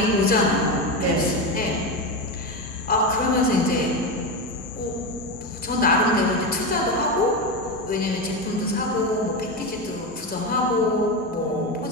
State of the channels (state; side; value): normal; both; correlation 0.16